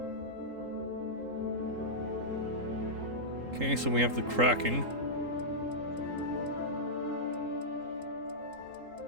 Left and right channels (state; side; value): late; left; 3.8 ms